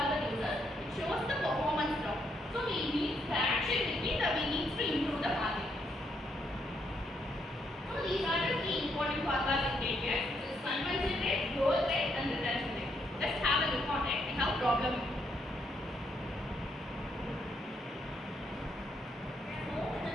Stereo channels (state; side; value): normal; both; correlation 0.76